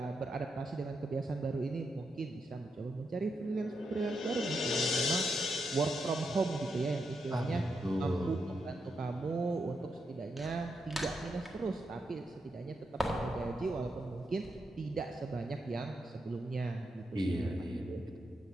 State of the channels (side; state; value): both; normal; correlation 0.83